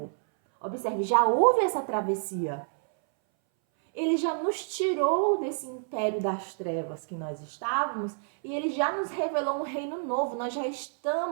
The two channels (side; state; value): left; silent; 59 dB below the other